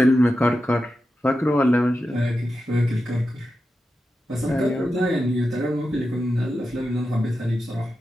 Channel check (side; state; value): both; normal; correlation 0.90